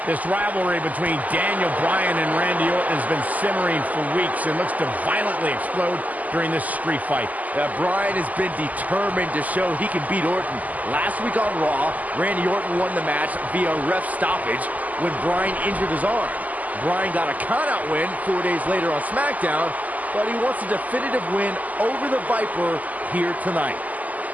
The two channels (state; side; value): late; left; 0.078 ms